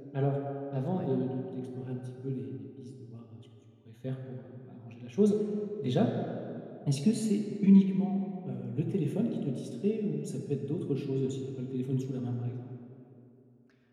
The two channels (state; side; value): identical; both; correlation 1.00